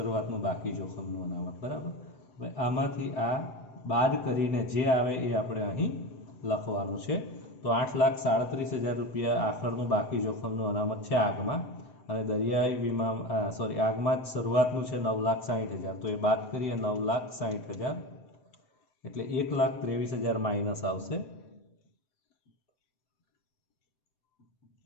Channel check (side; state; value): right; late; 7.9 ms